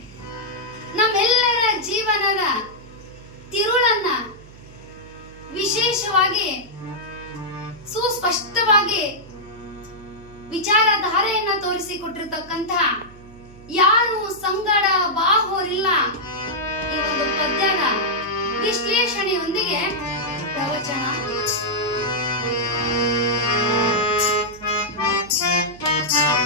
ನಮ್ಮೆಲ್ಲರ ಜೀವನದ ತಿರುಳನ್ನ ವಿಶೇಷವಾಗಿ ಸುಸ್ಪಷ್ಟವಾಗಿ ವಿಚಾರಧಾರೆಯನ್ನ ತೋರಿಸಿಕೊಟ್ಟಿರ್ತಕ್ಕಂಥ ಯಾರು ಸಂಗಡ ಬಾಹೋರಿಲ್ಲ ಈ ಒಂದು ಪದ್ಯದ ವಿಶ್ಲೇಷಣೆಯೊಂದಿಗೆ ಪ್ರವಚನ.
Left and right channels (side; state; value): right; noise; hum, 20 dB below the sound